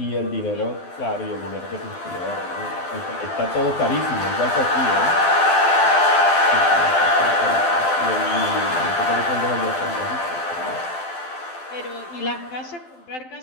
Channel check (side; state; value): right; late; 12 ms